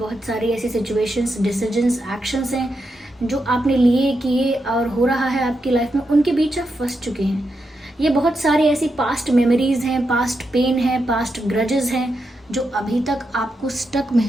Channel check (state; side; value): normal; both; correlation 0.85